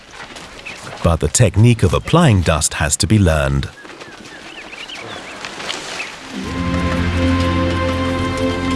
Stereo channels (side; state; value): both; identical; correlation 1.00